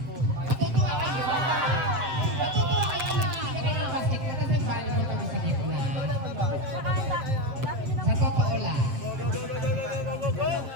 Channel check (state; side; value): late; left; 7.6 ms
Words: Matutuwa kayo. Matutuwa kayo na hindi kayo ng basketball kasi volleyball kami sa gitna. Sa totoo lang.